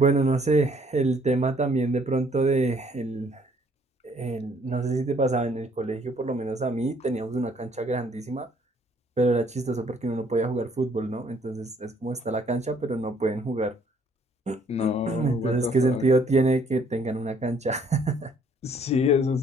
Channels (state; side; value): normal; both; correlation 0.63